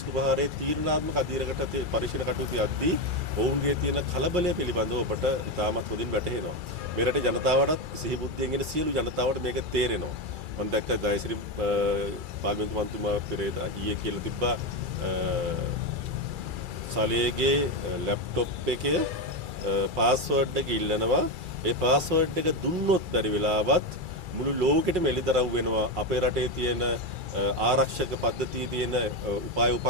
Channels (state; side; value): late; left; 2.3 ms